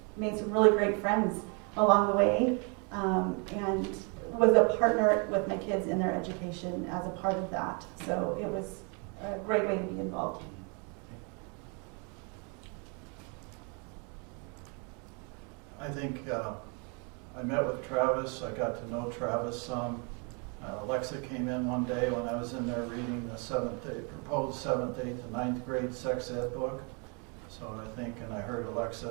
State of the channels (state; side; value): quieter; left; 35.0 dB